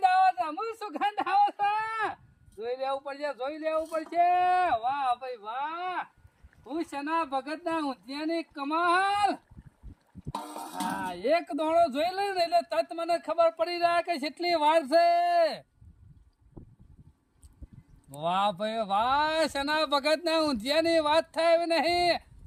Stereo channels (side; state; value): both; identical; correlation 1.00